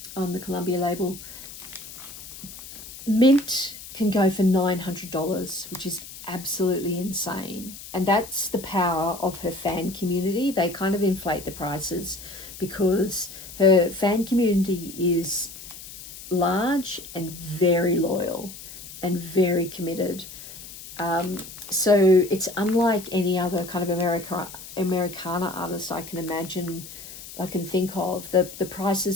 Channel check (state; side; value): noise; left; hiss, 14 dB below the sound